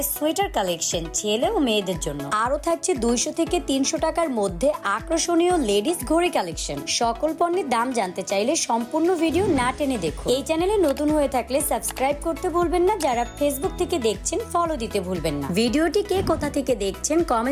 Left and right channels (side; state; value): both; identical; correlation 1.00